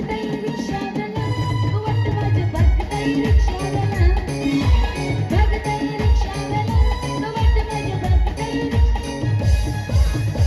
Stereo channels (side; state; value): both; identical; correlation 1.00